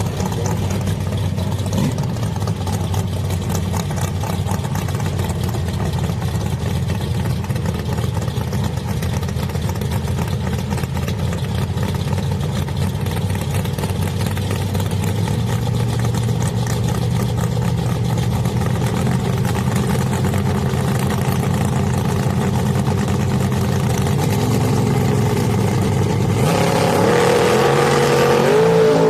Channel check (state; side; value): identical; both; correlation 1.00